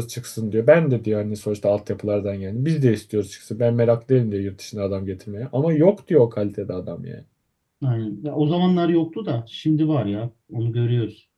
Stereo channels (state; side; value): identical; both; correlation 1.00